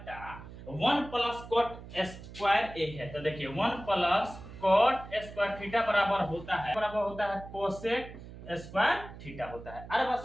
1 प्लस cot स्क्वायर a है। तो देखिए 1 प्लस cot स्क्वायर थीटा बराबर होता है cosec स्क्वायर थीटा होता है। अरे बस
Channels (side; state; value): right; noise; hum, 14 dB below the sound